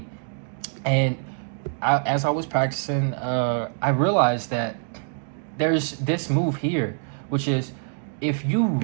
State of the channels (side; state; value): left; silent; digital silence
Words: And as I was practicing, I realized that there's this move here, which is if you